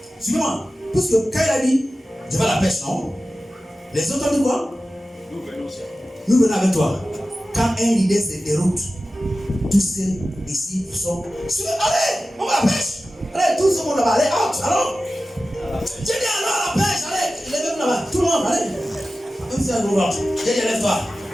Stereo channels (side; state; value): both; normal; correlation 0.95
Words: Suivez-moi. Parce que quand il a dit, je vais à la pêche, non? Les autres ont dit quoi? Nous venons aussi. Nous venons avec toi. Quand un leader se déroute, tous ces disciples sont. Allez, on va à la pêche. Allez, tout le monde là-bas, allez, out, allons. J'ai dit allons à la pêche, allez, lève-vous là-bas, tout le monde, allez. Même si on va, j'ai dit lève-toi.